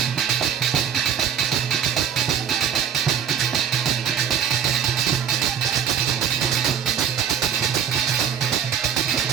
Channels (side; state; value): left; quieter; 8.5 dB